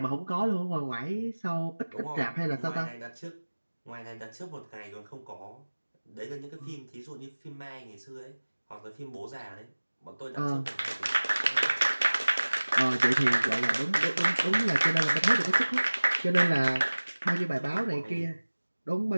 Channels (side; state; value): both; inverted; correlation -1.00